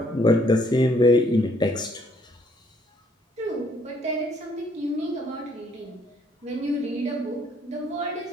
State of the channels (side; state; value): both; normal; correlation 0.66